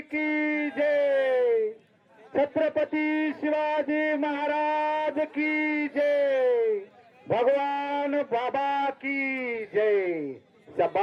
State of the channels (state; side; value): identical; both; correlation 1.00